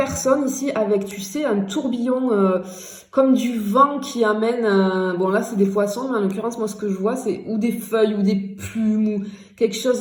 ici avec, tu sais, un tourbillon comme du vent qui amène. Bon, là, c'est des poissons, mais en l'occurrence, moi, ce que je vois, c'est ou des feuilles ou des plumes ou quelque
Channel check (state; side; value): identical; both; correlation 1.00